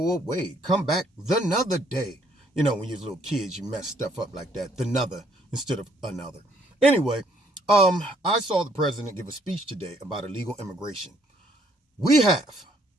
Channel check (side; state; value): both; normal; correlation 0.66